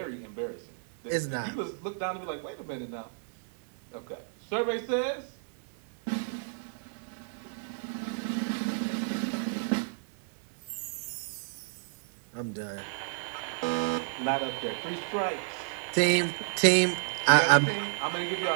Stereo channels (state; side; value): silent; left; digital silence